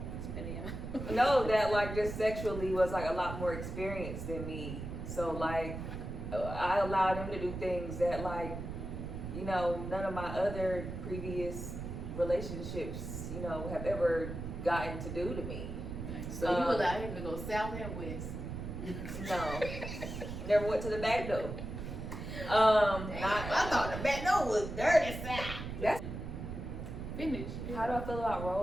No, that like just sexually was like a lot more experienced than me. So like I allowed him to do things that like, you know, none of my other previous relationships, you know, have ever gotten to do to me. So you allowed him to go south and west? No, never went to the back door. I thought the back door was dirty south. That's Finish. how do I feel about role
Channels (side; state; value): right; noise; rumble, 7 dB below the sound